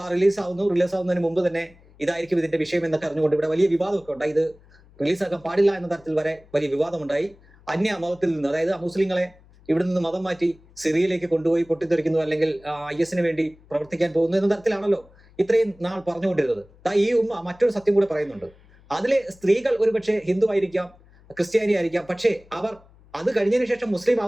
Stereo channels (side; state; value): left; noise; hum, 27 dB below the sound